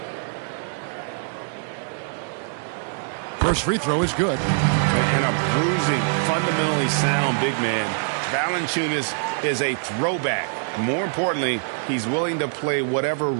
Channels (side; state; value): left; silent; digital silence